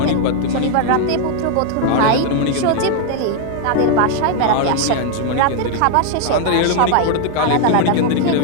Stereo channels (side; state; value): both; different; correlation 0.00